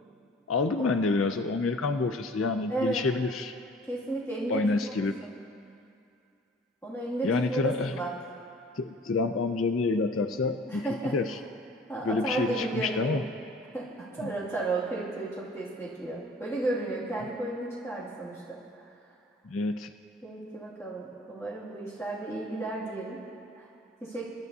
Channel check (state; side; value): normal; both; correlation 0.49